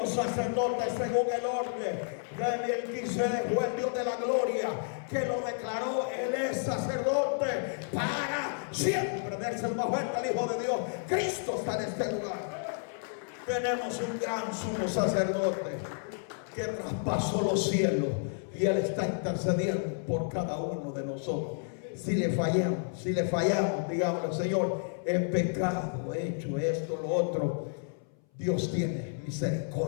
sacerdote según el orden de Melquisedec. Fue el Dios de la gloria que lo declaró. Él es sacerdote para siempre. Dense el más fuerte al Hijo de Dios. Cristo está en este lugar. Tenemos un gran sumo sacerdote que traspasó los cielos, y Él está intercediendo por cada uno de nosotros. Si le fallamos, digamos: Señor, he pecado, he hecho esto, lo otro. Dios tiene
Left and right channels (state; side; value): silent; right; 57 dB below the other